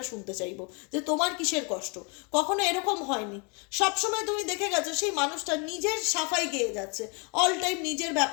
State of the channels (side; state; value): right; quieter; 33.9 dB